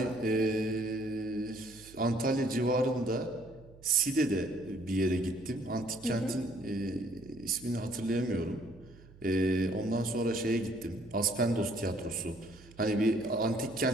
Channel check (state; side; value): noise; right; hum, 22 dB below the sound